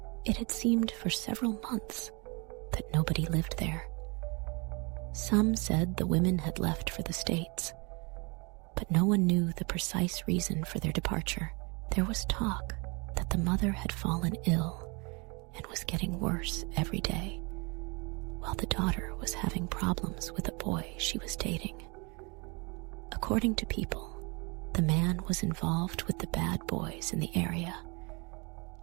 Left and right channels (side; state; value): left; quieter; 29.7 dB